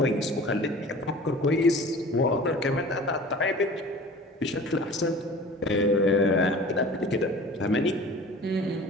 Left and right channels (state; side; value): normal; both; correlation 0.42